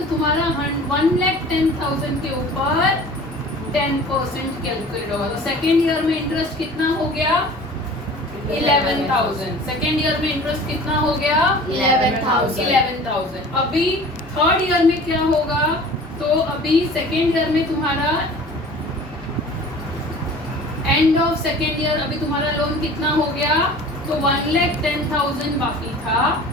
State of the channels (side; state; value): both; normal; correlation 0.43